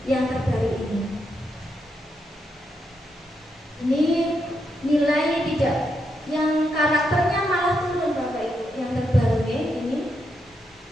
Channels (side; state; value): both; normal; correlation 0.82